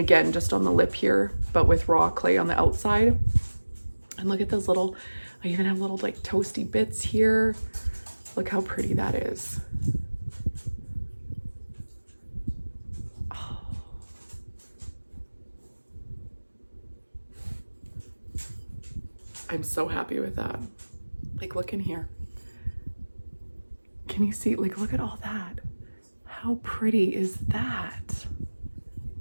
just on the lip here, but with raw clay on the outside. And look at those little, I even have little like toasty bits here. Look how pretty that is. Oh. I'm so happy with that. Like look in here. Can you see, like look at all that. How pretty is that?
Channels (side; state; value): both; inverted; correlation -1.00